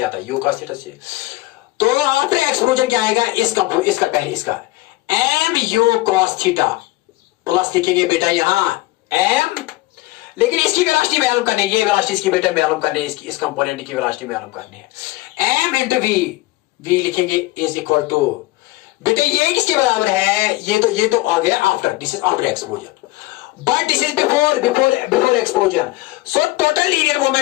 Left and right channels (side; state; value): right; quieter; 19.4 dB